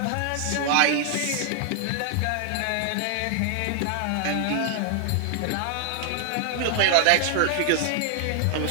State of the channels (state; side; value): different; both; correlation 0.00